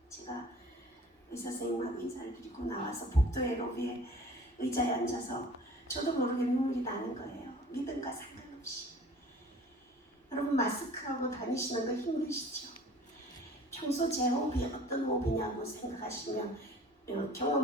제가 의사 선생님하고 인사를 드리고 나와서 복도의 로비에 의자에 앉아서 저도 모르게 눈물이 나는 거예요. 믿음과 상관없이. 여러분, 마스크하고 다니시는 거 힘드시죠? 평소 제 호흡이 어떤 호흡이냐고 생각하시면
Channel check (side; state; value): both; normal; correlation 0.47